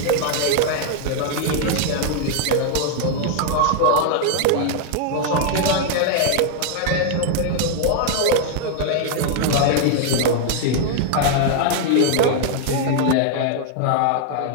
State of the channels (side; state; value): both; different; correlation 0.00